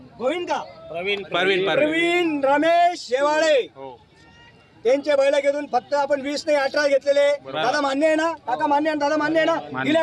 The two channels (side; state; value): both; identical; correlation 1.00